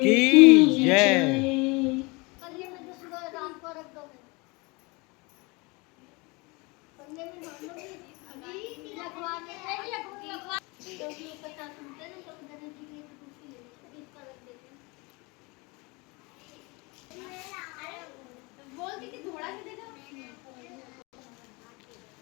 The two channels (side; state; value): right; quieter; 26.8 dB